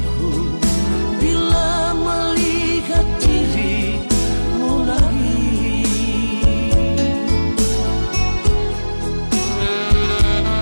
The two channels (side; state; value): both; inverted; correlation -1.00